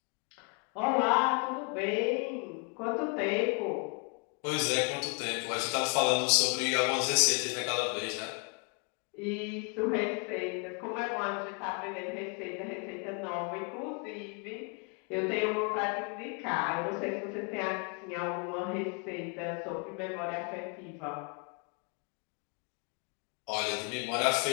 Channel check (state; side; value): quieter; right; 35.8 dB